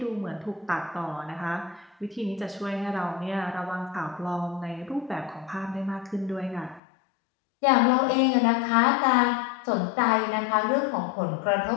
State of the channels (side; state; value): right; drops out; at 6.8 s